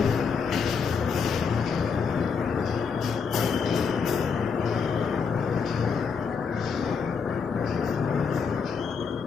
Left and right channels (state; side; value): quieter; right; 5.9 dB